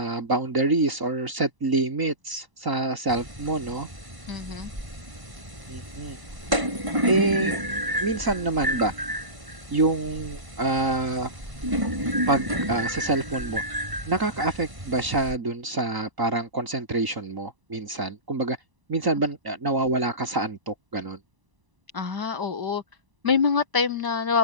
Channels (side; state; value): left; late; 1.0 ms